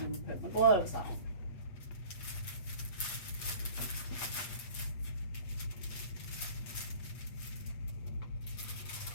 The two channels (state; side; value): late; right; 8.4 ms